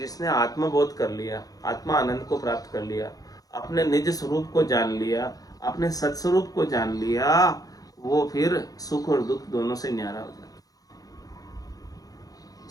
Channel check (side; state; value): right; late; 0.18 ms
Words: आत्मबोध कर लिया, आत्मा आनंद को प्राप्त कर लिया, अपने निज स्वरूप को जान लिया, अपने सत्स्वरूप को जान लिया, वो फिर सुख और दुख दोनों से न्यारा हो जाता।